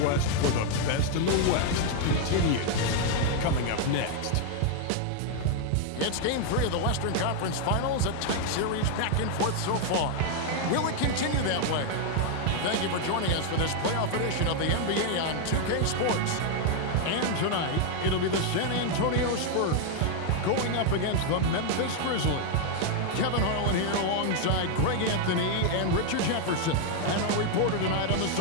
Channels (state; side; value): different; both; correlation 0.00